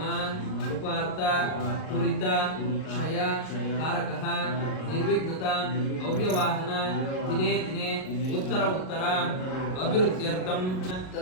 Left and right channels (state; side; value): late; right; 38 ms